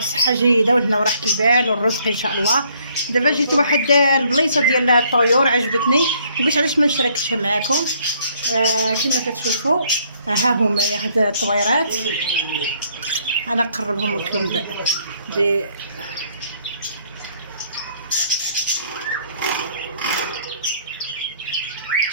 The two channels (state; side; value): inverted; both; correlation -0.65